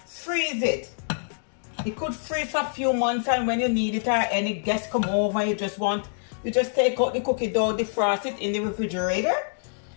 freeze it. It could freeze for a few months, and when you need it or any guests come over, you just take out the cookie dough, defrost it in the refrigerator,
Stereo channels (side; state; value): right; silent; digital silence